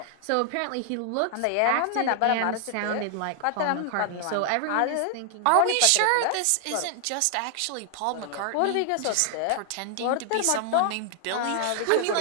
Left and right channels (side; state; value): both; different; correlation 0.00